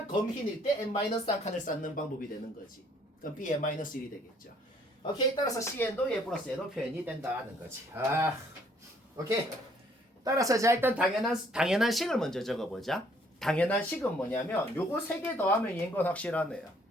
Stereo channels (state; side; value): normal; both; correlation 0.63